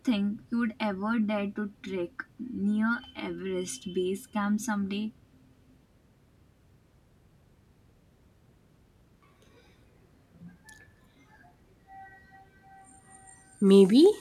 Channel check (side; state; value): both; identical; correlation 1.00